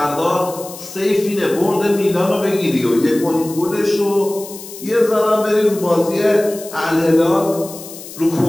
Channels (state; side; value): noise; left; hiss, 14 dB below the sound